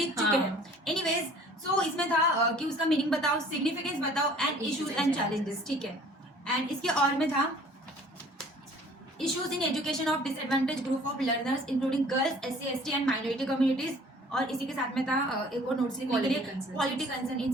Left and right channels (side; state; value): both; normal; correlation 0.52